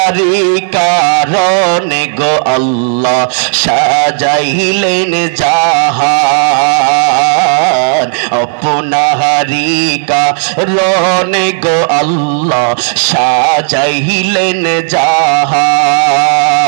কারণে গো আল্লাহ সাজাইলেন জাহান, আপনারি কারণে গো আল্লাহ সাজাইলেন জাহান,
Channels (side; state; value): left; silent; digital silence